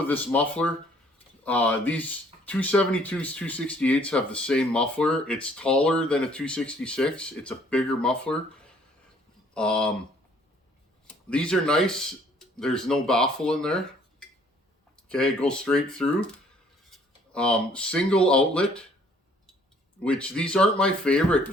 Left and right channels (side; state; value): both; normal; correlation 0.61